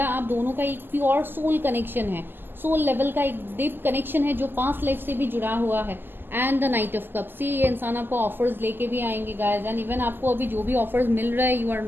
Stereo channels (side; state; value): left; late; 0.094 ms